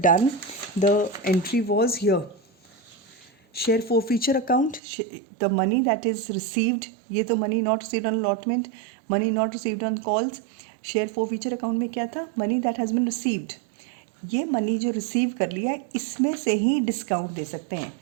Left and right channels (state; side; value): drops out; left; at 4.8 s